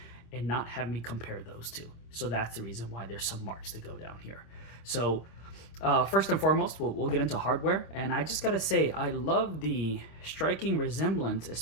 and not have me compare those two. So that's the reason why there's some marks to go down here. So First and foremost, we'll get into hardware, and I just gotta say, I love the striking resemblance,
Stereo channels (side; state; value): right; late; 26 ms